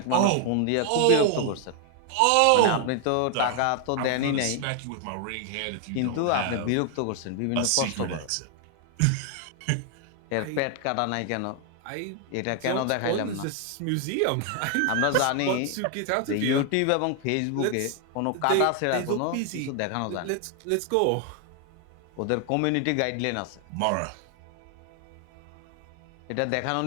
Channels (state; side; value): different; both; correlation 0.00